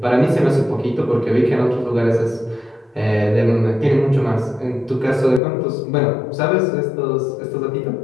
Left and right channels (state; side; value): drops out; right; at 5.4 s